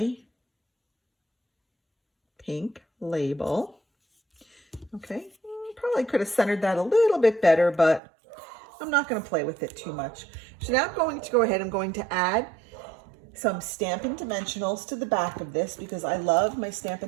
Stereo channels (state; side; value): drops out; left; at 8.0 s